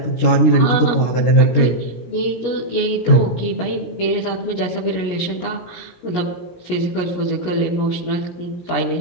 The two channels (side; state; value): right; late; 17 ms